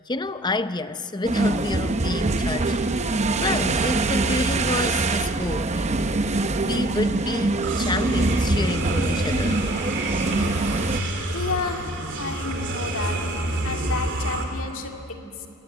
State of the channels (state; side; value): normal; both; correlation 0.54